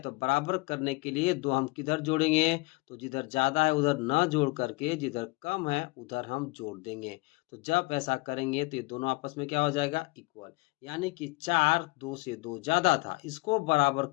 तो बराबर करने के लिए 2 हम किधर जोड़ेंगे, तो जिधर ज्यादा है उधर न जोड़ करके जिधर कम है उधर हम जोड़ देंगे। तो जब ऐसा करेंगे तो ये दोनों आपस में क्या हो जाएगा, इक्वल। यानी कि 4 2 से 2 ज्यादा था, इसको बराबर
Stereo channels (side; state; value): right; quieter; 24.7 dB